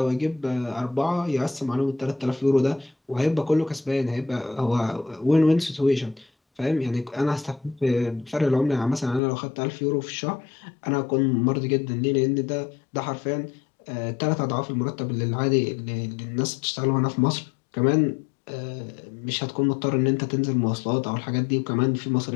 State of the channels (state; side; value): drops out; right; at 9.2 s